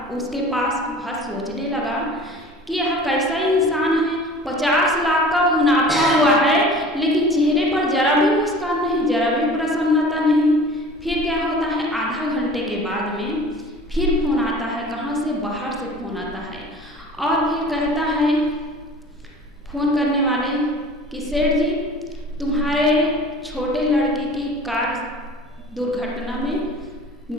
उसके पास वह सोचने लगा कि यह कैसा इंसान है, 50 लाख का मुनाफा हुआ है, लेकिन चेहरे पर जरा भी मुस्कान नहीं, जरा भी प्रसन्नता नहीं। फिर क्या होता है, आधा घंटे के बाद में फिर फोन आता है, कहाँ से? बाहर से फोन आता है और फिर कहता है फोन करने वाले कि सेठ जी, तुम्हारे छोटे लड़के की कार दुर्घटना में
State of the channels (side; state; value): both; normal; correlation 0.43